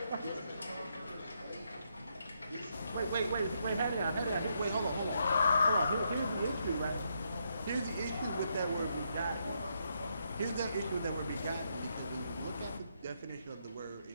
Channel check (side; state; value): both; inverted; correlation -0.78